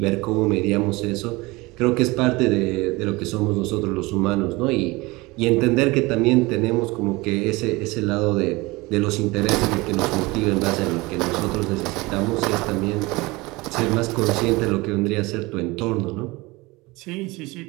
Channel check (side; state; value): left; quieter; 22.7 dB